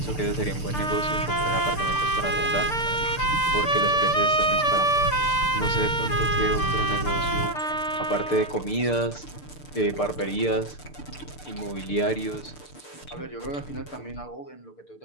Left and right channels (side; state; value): right; late; 6.7 ms